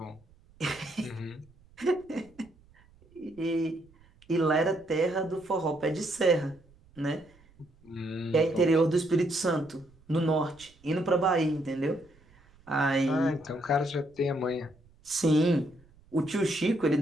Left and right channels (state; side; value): noise; right; rumble, 29 dB below the sound